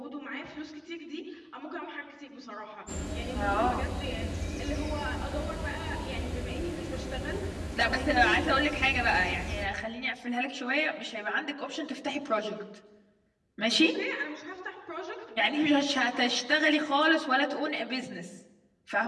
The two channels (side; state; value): both; identical; correlation 1.00